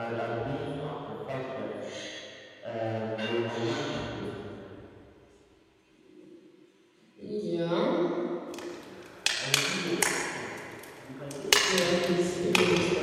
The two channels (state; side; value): identical; both; correlation 1.00